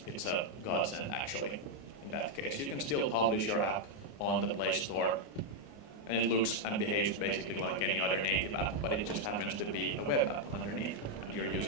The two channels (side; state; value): right; late; 29 ms